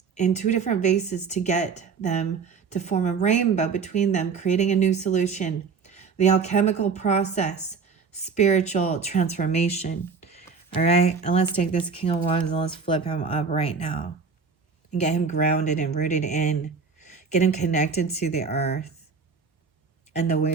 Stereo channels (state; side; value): quieter; left; 5.3 dB